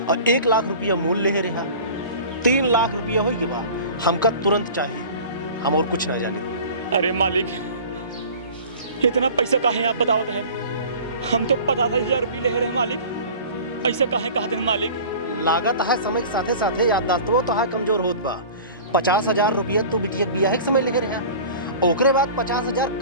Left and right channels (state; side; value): inverted; both; correlation -0.41